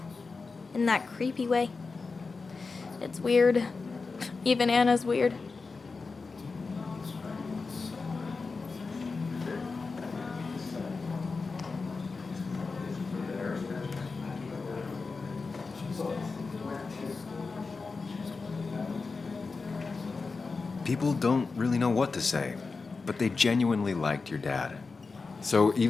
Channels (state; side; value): quieter; right; 4.3 dB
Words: in that creepy way. It's weird. Even Anna's weird. People don't really know what to say, but they genuinely liked your dad. So